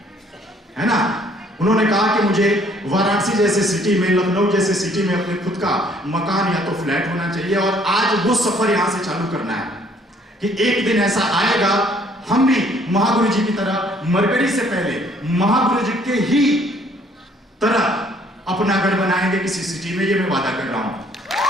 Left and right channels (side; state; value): both; normal; correlation 0.61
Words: है ना। उन्होंने कहा कि मुझे वाराणसी जैसे सिटी में, लखनऊ जैसे सिटी में अपने खुद का मकान या तो फ्लैट होना चाहिए। और आज वो सफर यहां से चालू करना है कि एक दिन ऐसा आएगा हम भी महागुरु जी की तरह, मरकरी से पहले महागुरु जी के ही तरह अपना घर बनाएंगे किसी सिटी में। ये मैं वादा कर रहा हूं।